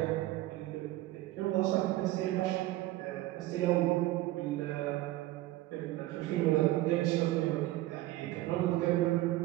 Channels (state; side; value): quieter; left; 16.9 dB